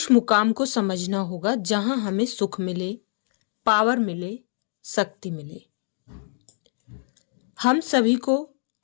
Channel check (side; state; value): right; silent; digital silence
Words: मुकाम को समझना होगा जहां हमें सुख मिले, पावर मिले, शक्ति मिले। हम सभी को